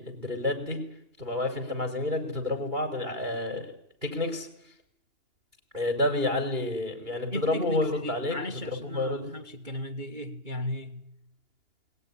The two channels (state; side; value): late; left; 2.8 ms